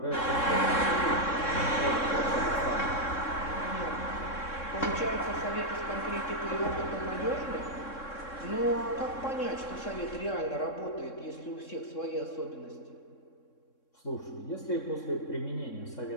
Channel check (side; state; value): right; late; 3.6 ms